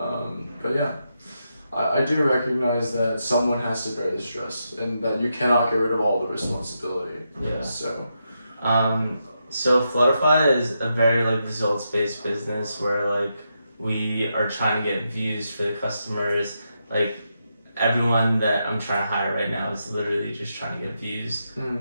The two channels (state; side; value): inverted; both; correlation -0.84